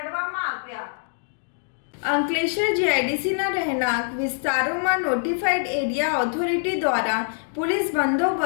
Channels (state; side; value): silent; right; digital silence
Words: આવ્યા। અંકલેશ્વર જીઆઈડીસીના રહેણાંક વિસ્તારોમાં નોટિફાઈડ એરિયા ઓથોરિટી દ્વારા પોલીસ